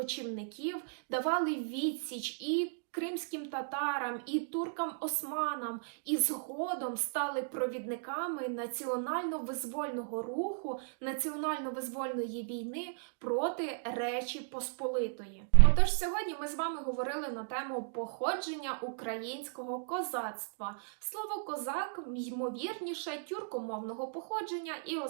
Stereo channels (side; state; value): left; silent; digital silence